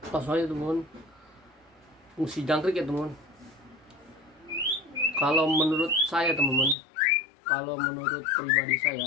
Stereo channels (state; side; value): drops out; right; at 6.8 s